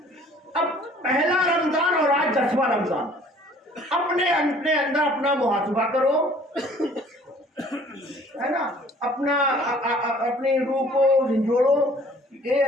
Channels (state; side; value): normal; both; correlation 0.54